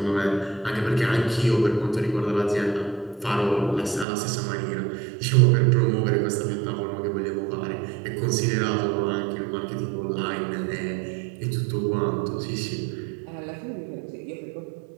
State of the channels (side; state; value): left; drops out; at 4.0 s